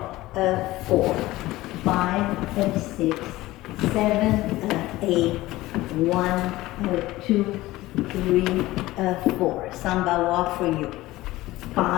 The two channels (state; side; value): quieter; right; 17.8 dB